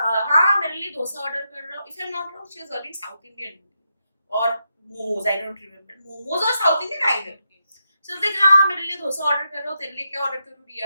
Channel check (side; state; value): both; inverted; correlation -0.84